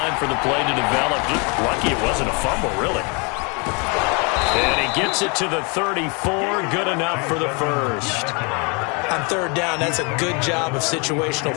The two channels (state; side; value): quieter; right; 32.2 dB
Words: for the play to develop. Just lucky it wasn't a fumble, really. And he gets it to the 34. Good enough for the first. On third down, that's a good job of situational